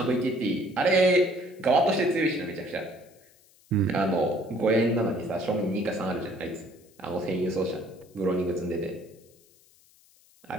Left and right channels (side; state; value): left; noise; hiss, 30 dB below the sound